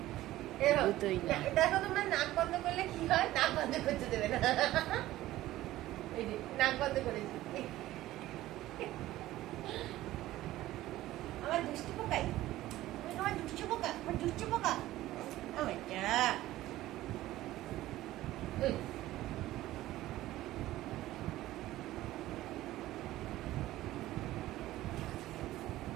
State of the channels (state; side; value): quieter; left; 15.6 dB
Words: দুটোই না। দেখো তোমরা নাক বন্ধ করলে কি হয়, নাক বন্ধ করতে দেবে না। এই যে নাক বন্ধ করেছি। আমার দুষ্টু পোকাই, আমার দুষ্টু পোকা, আমার দুষ্টু পোকা।